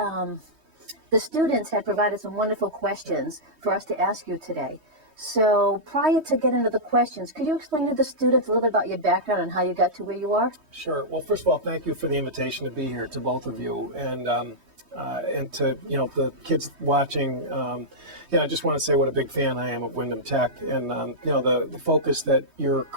the students had provided some wonderful questions for us to ask you today. So prior to getting to the questions, could you explain to the students a little bit about your background and how you got to where you are? Sure. Well, first of all, thank you for the invitation to be here, to both of you, and to the kids watching. I just want to say what a big fan I am of Windham Tech, and the focus that your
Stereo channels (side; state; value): left; late; 3.2 ms